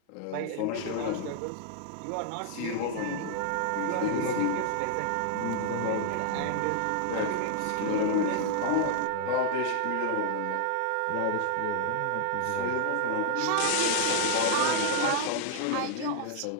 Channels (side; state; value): both; different; correlation -0.01